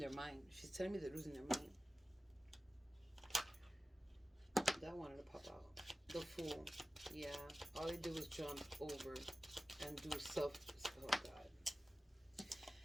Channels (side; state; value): both; normal; correlation 0.95